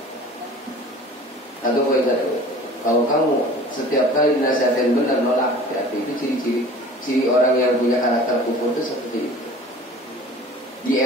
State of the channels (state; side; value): normal; both; correlation 0.44